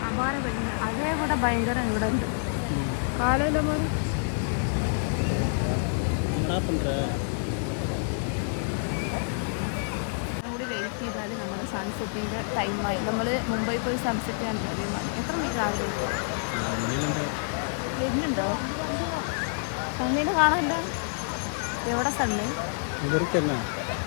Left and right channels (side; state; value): right; silent; digital silence